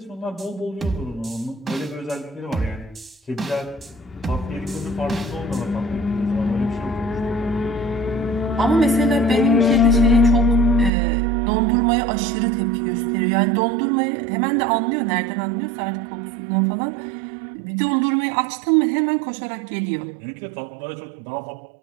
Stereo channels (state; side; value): drops out; left; at 10.9 s